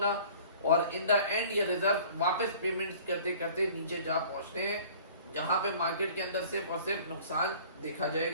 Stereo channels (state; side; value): inverted; both; correlation -0.49